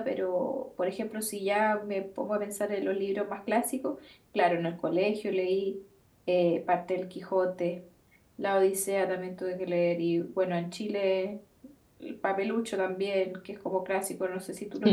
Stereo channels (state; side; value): identical; both; correlation 1.00